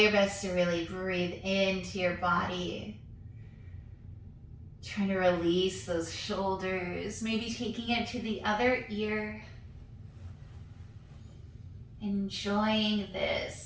best to really breathe into your body. Trying to release those shoulders, maybe taking it to the other ear. Enjoying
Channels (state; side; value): identical; both; correlation 1.00